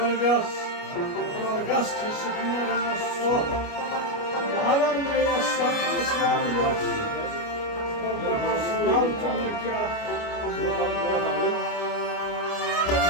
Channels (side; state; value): right; late; 29 ms